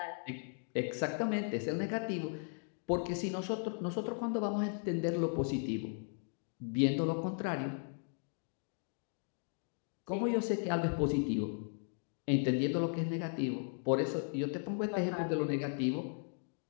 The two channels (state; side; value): silent; right; 53 dB below the other